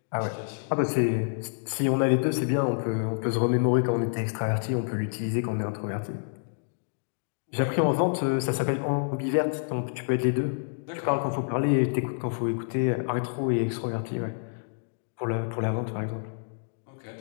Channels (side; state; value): right; silent; digital silence